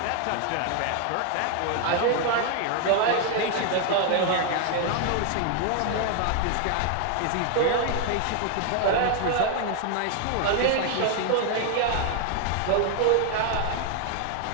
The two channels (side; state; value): both; different; correlation 0.00